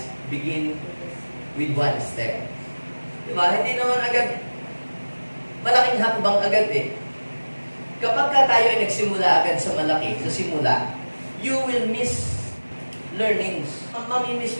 begin with one step. Diba? Hindi naman agad, malaking hakbang agad eh. Kapag ka tayo ay nagsimula agad sa malaki, sa simula, you will miss learnings. Mamimiss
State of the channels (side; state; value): both; inverted; correlation -1.00